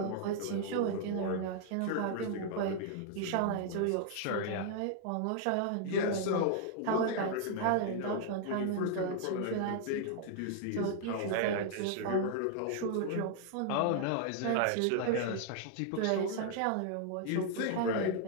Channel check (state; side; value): different; both; correlation 0.00